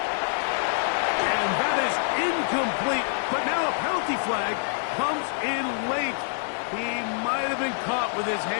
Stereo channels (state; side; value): silent; right; 60 dB below the other